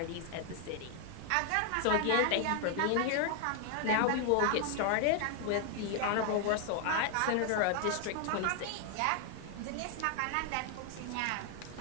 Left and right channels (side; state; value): both; different; correlation 0.00